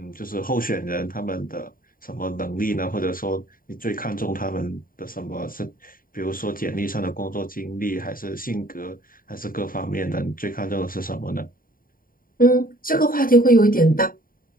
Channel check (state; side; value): late; right; 0.41 ms